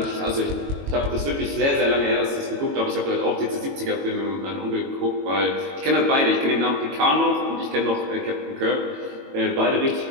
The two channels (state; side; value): late; left; 22 ms